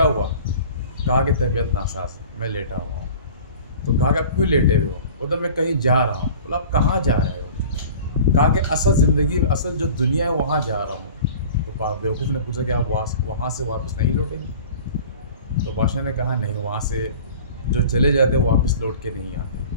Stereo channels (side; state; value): both; inverted; correlation -0.42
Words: हुआ। कहा कि तबीयत नासाज है, मैं लेटा हुआ हूँ। तो कहा कि आप क्यों लेटे हुए हो। बोला मैं कहीं जा रहा हूँ। बोला आप कहाँ जा रहे हो। कहा कि असल ज़िंदगी, असल जो दुनिया है वहाँ जा रहा हूँ। तो बेवकूफ़ ने पूछा कि आप वहाँ से वापस नहीं लौटेंगे। तो बादशाह ने कहा नहीं, वहाँ से जो चले जाते वो वापस लौट के नहीं आते।